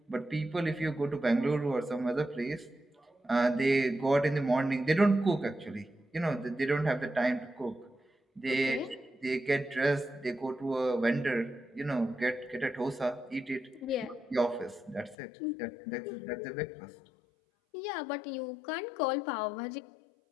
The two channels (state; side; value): drops out; right; at 15.2 s